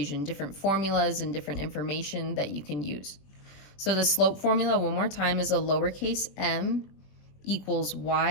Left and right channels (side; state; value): right; late; 21 ms